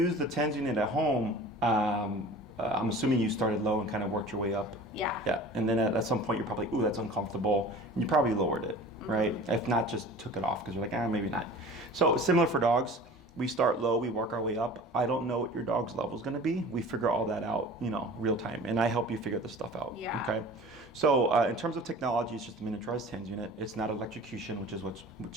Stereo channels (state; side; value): normal; both; correlation 0.41